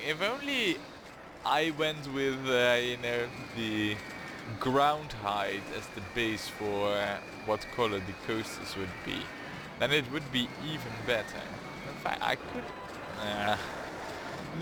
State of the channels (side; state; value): both; identical; correlation 1.00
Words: If only I went with, you know, the ground height as the base for what color the coasters would be, then it would be even better. In fact, I could...